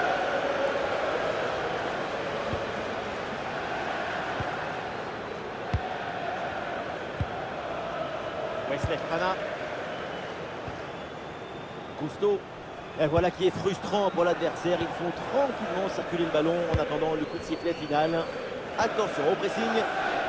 Wesley Fofana. Cousteau. Et voilà qui est frustrant pour l'adversaire. Ils font tranquillement circuler le ballon en attendant le coup de sifflet final. Attention au pressing.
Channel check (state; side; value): identical; both; correlation 1.00